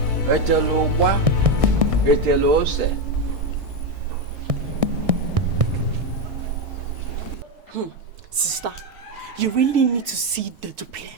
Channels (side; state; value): left; late; 1.6 ms